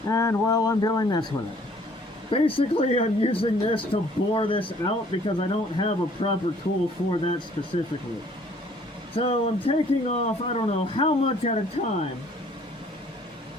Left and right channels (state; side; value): normal; both; correlation 0.58